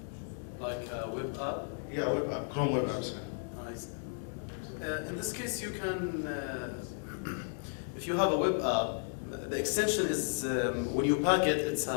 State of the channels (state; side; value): silent; right; digital silence